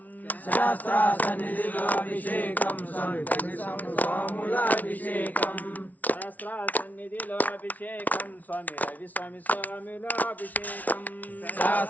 శాస్త్ర సన్నిధిలో అభిషేకం స్వామి స్వాములాభిషేకం శాస్త్ర సన్నిధిలో అభిషేకం స్వామి రవి స్వామి స్వాములాభిషేకం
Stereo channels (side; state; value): right; late; 0.075 ms